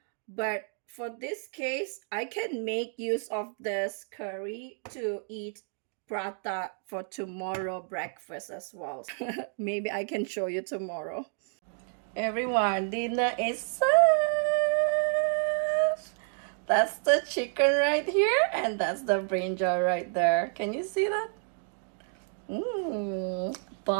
But for this case, I can make use of this curry to eat prata for tomorrow breakfast as well. Maybe I can show you tomorrow. Everyone, dinner is served. That's the chicken right here, and that's the brinjal right there. Can you see that?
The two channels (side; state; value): left; silent; 58 dB below the other